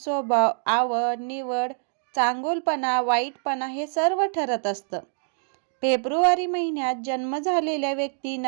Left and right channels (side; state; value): left; silent; digital silence